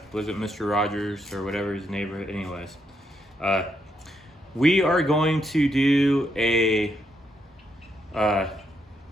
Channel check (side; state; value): both; normal; correlation 0.78